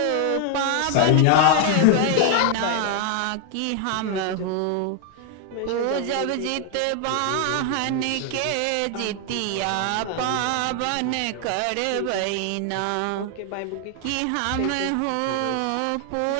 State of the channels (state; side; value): different; both; correlation 0.00